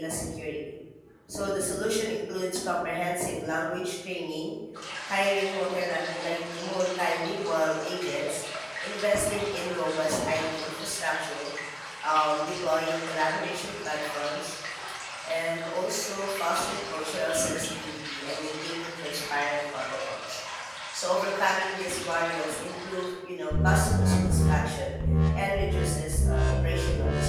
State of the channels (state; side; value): identical; both; correlation 1.00